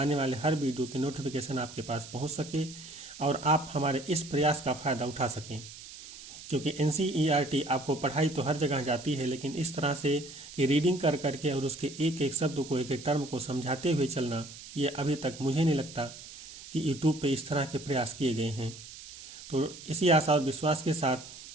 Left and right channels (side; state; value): right; noise; hiss, 15 dB below the sound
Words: वाले हर वीडियो की नोटिफिकेशन आपके पास पहुंच सके और आप हमारे इस प्रयास का फ़ायदा उठा सकें। क्योंकि NCERT आपको पढ़ाई तो हर जगह जाती है, लेकिन इस तरह से कि रीडिंग कर करके और उसके एक एक शब्द को, एक एक टर्म को समझाते हुए चलना, ये अभी तक मुझे नहीं लगता कि यूट्यूब पे इस तरह के प्रयास किए गए हैं। तो इसी आशा और विश्वास के साथ